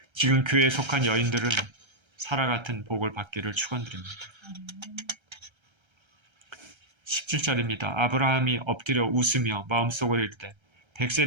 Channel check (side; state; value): left; late; 1.3 ms